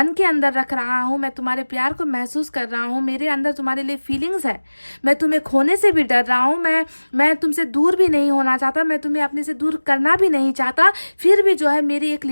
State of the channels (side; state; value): both; inverted; correlation -1.00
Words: के अंदर रख रहा हूँ, मैं तुम्हारे प्यार को महसूस कर रहा हूँ, मेरे अंदर तुम्हारे लिए फीलिंग्स है, मैं तुम्हें खोने से भी डर रहा हूँ, मैं तुमसे दूर भी नहीं होना चाहता, मैं तुम्हें अपने से दूर करना भी नहीं चाहता, फिर भी जो है मेरी एक